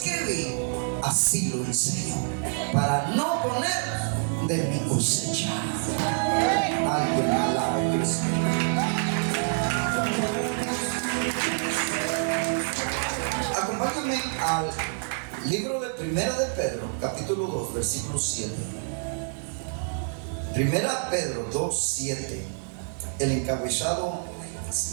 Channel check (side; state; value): left; silent; 60 dB below the other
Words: así lo enseño, para no poner de mi cosecha. Alguien alabe a Cristo. Acompáñame al libro de Primera de Pedro, capítulo 2, versículo 7. Primera Pedro 2, 7. El encabezado